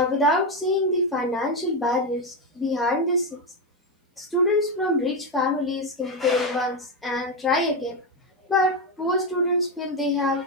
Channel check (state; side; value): normal; both; correlation 0.10